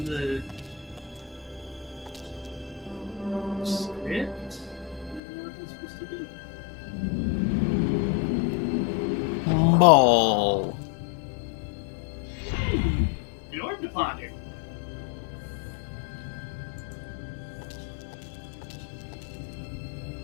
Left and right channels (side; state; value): right; drops out; at 5.2 s